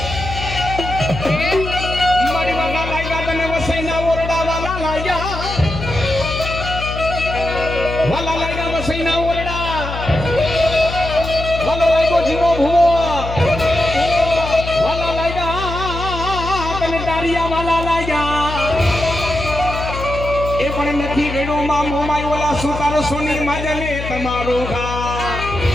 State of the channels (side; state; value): left; noise; hum, 7 dB below the sound